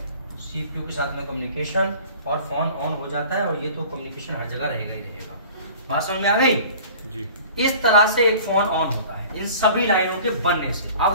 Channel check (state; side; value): inverted; both; correlation -0.45